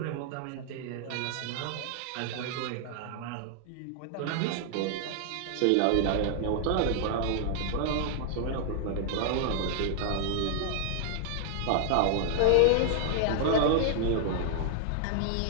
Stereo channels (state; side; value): different; both; correlation -0.01